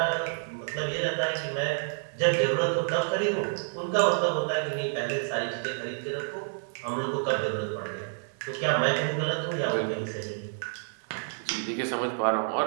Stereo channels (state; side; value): silent; left; 59 dB below the other